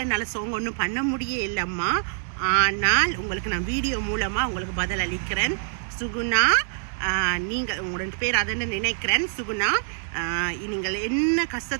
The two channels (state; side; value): silent; left; 62 dB below the other